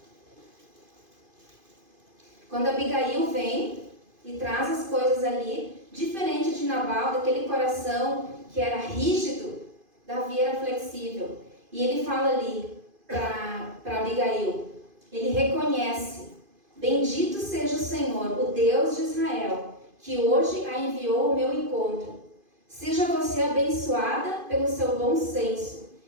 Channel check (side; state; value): left; late; 2.5 ms